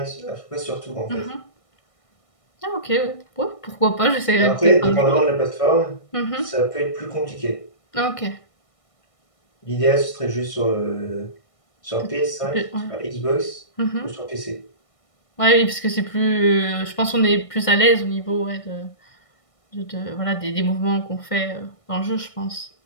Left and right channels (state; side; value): late; right; 1.6 ms